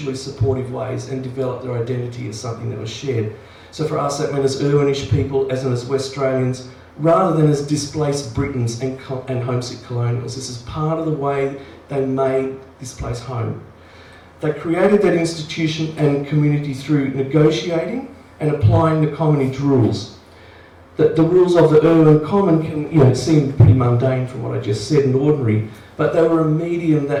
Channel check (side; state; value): both; identical; correlation 1.00